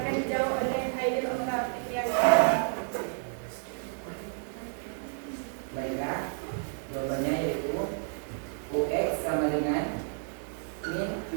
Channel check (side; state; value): left; silent; 57 dB below the other